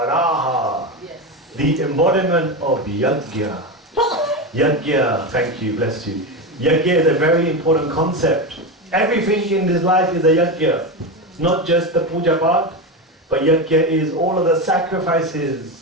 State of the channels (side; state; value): both; normal; correlation 0.17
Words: yes. The embodiment of Yajna. Yajna, thank you, bless you. Yajna is a very important concept. Everything in this life is a yajna. Not just the puja part, but yajna is all of the